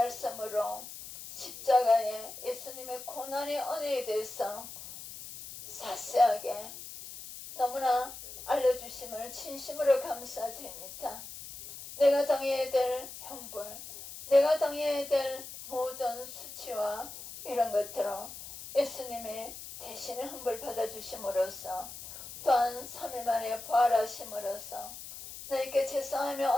십자가에 예수님의 고난의 은혜에 대해서 자세하게 너무나 알려주심을 진심으로 감사드립니다. 내가 당해야 될 형벌, 내가 당해야 될 모든 수치와 이런 것들을 예수님의 대신에 형벌 받아주심으로써, 또한 3일 만에 부활하심으로써 나에게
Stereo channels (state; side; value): noise; left; hiss, 12 dB below the sound